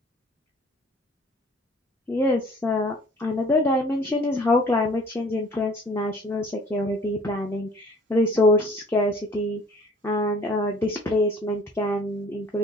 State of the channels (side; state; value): both; normal; correlation 0.52